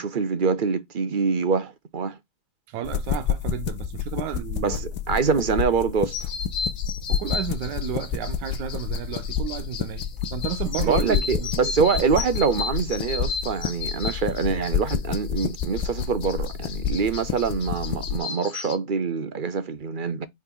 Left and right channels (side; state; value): left; late; 2.0 ms